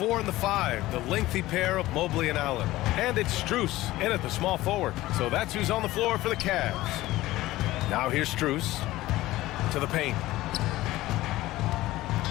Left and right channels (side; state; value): right; quieter; 17.1 dB